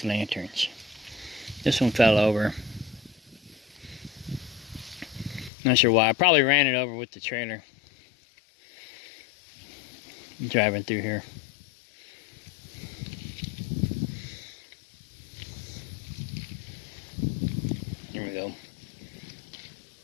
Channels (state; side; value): drops out; right; at 5.5 s